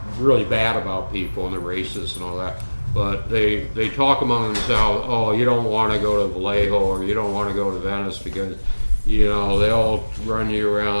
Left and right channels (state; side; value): inverted; both; correlation -1.00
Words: really bad about people and the racists and all that. But they talk among themselves, oh, you don't want to go to Vallejo or you don't want to go to Venice because, you know, they'll run you